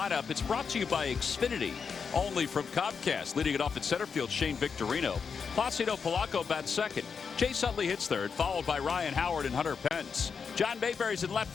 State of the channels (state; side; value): quieter; right; 5.9 dB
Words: It's brought to you by Xfinity, only from Comcast. Leading it off at center field, Shane Victorino. Placido Polanco bats second. Chase Utley hits third, followed by Ryan Howard and Hunter Pence. John Mayberry's in left